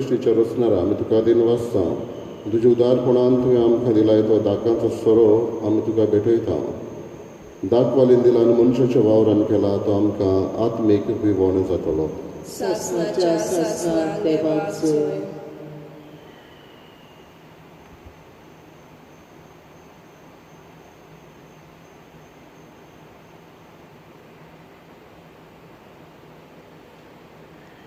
रचणारा आमी तुका दिन वाचता. तुज्या उदारपणान तुवें आमकां दिलाय तो दाकांचो सोरो आमी तुका भेटयता. दाखवालीन दिलान मनशाच्या वावरान केला तो आमकां आत्मीक विवण जातलो. सासणाच्या सासणाक देवाक जोय.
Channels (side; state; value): both; identical; correlation 1.00